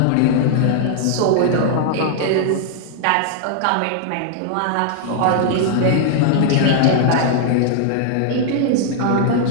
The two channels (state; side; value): different; both; correlation -0.01